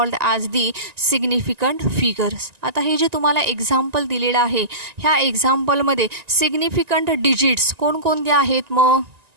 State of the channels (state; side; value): late; left; 1.9 ms